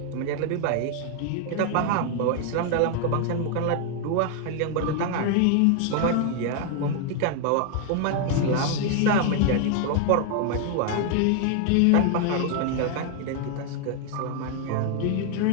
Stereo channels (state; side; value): different; both; correlation 0.00